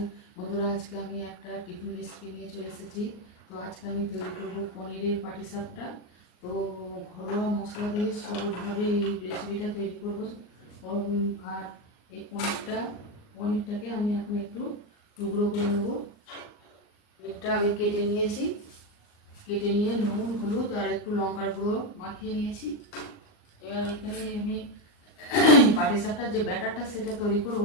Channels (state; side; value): late; right; 39 ms